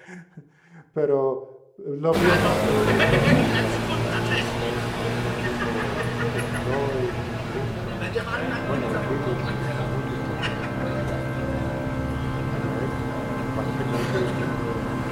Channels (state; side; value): identical; both; correlation 1.00